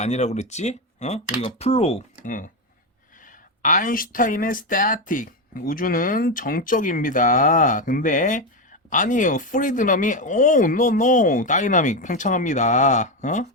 그랬지? 우리가 플로우. 아인슈타인의 스태틱. 우주는 정적입니다. 근데 아니에요. 프리드럼이 노 다이나믹 팽창합니다.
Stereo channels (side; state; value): both; normal; correlation 0.11